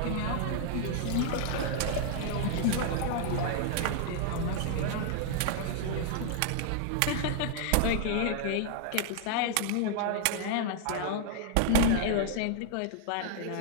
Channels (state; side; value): different; both; correlation -0.01